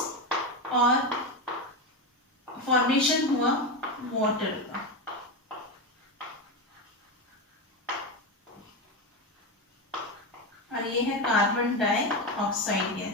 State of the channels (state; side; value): normal; both; correlation 0.14